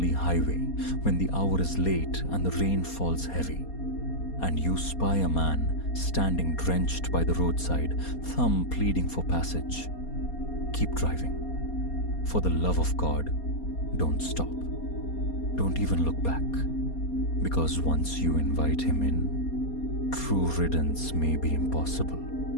highway when the hour is late and the rain falls heavy, and you spy a man standing drenched by the roadside, thumb pleading for passage, keep driving. For the love of God, don't stop. Don't even look back. Because once you invite him in, true riddance may be impossible.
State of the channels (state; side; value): late; right; 4.3 ms